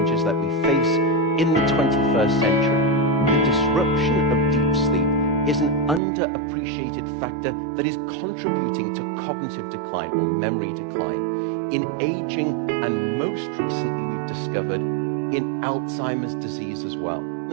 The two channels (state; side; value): drops out; left; at 6.0 s